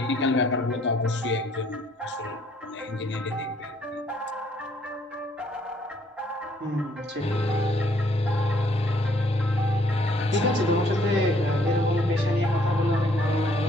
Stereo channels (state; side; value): normal; both; correlation 0.65